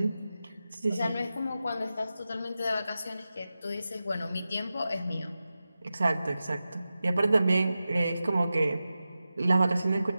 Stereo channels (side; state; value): both; inverted; correlation -0.93